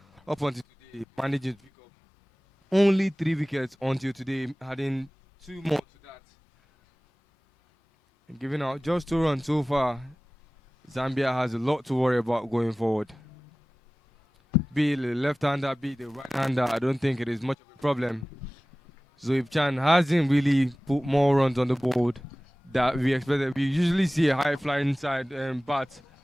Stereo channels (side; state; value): both; normal; correlation 0.97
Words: up until today, managing to pick up only 3 wickets until today, having 2 more to that. And giving out just 2 runs so far, Zambia has a lot to worry about going forward. Be it the left-hander, be it the right-hander, I don't think it is much of a problem. Zoib Chan hasn't really put more runs on the board that we expected. We usually see a high-flying side bat